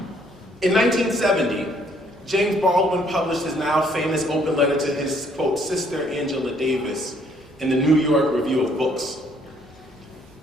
In 1970, James Baldwin published his now famous open letter to his, quote, sister Angela Davis in the New York Review of Books.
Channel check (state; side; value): normal; both; correlation 0.65